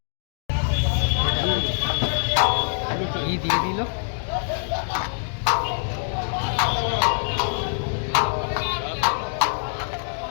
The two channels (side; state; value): right; silent; digital silence